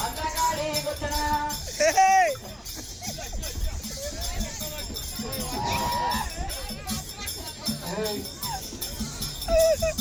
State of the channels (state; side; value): identical; both; correlation 1.00